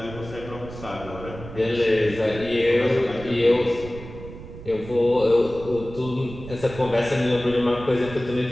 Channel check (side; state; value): right; noise; rumble, 13 dB below the sound